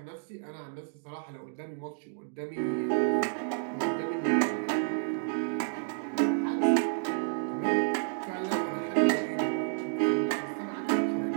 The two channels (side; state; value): left; silent; digital silence